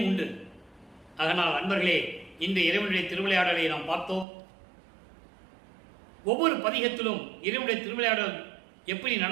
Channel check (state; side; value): drops out; left; at 4.2 s